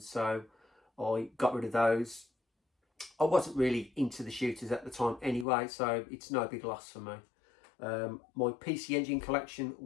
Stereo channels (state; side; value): drops out; right; at 5.5 s